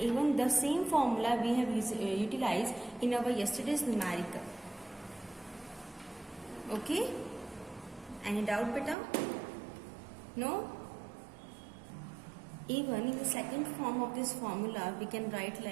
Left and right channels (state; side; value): drops out; left; at 9.0 s